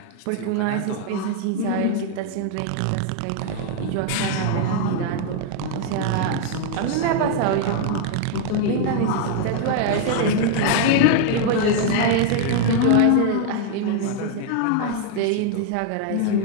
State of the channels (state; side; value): different; both; correlation 0.00